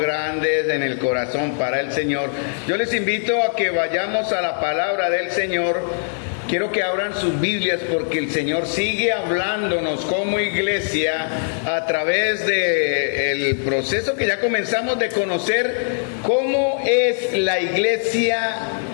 en el corazón para el Señor, yo les invito a que vayamos a la palabra del Señor. Quiero que abran sus Biblias porque el Señor sigue hablándonos como iglesia a través del proceso que ya comenzamos de conocer cómo es la iglesia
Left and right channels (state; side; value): silent; right; digital silence